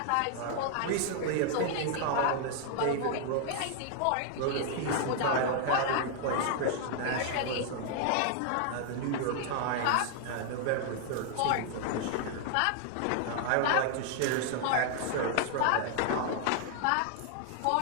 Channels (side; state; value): both; different; correlation 0.00